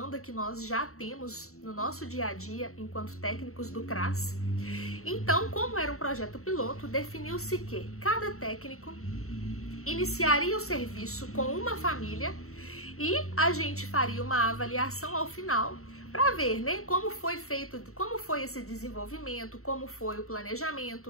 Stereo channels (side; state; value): right; late; 0.63 ms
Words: que nós já temos no nosso dia a dia enquanto técnicos do CRAS. Então, como era um projeto piloto, definiu-se que cada técnico iniciaria o serviço com uma família e a gente faria uma avaliação ao final para ver, como foi feito, como foi esse desenvolvimento, como foi o